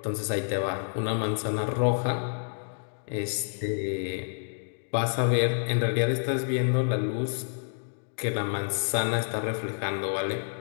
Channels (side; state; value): right; silent; digital silence